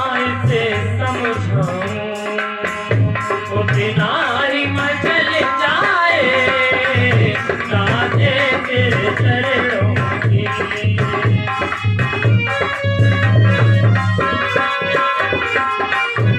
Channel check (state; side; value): identical; both; correlation 1.00